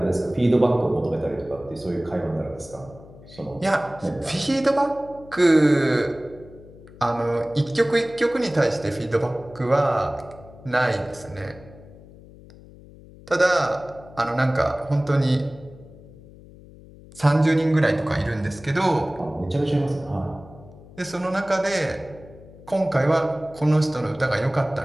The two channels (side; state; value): left; noise; hum, 20 dB below the sound